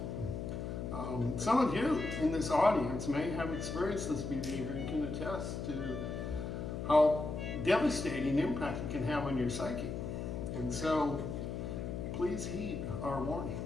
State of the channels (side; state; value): left; noise; hum, 5 dB below the sound